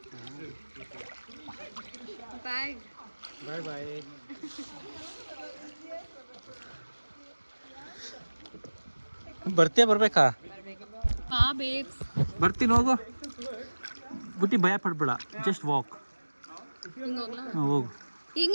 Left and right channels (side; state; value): both; inverted; correlation -1.00